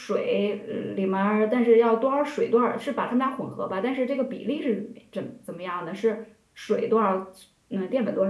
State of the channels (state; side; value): identical; both; correlation 1.00